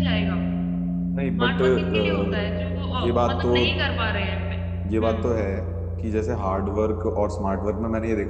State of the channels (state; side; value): identical; both; correlation 1.00